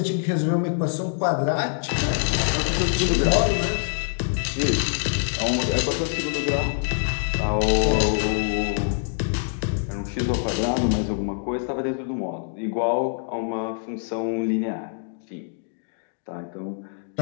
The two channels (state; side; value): silent; right; digital silence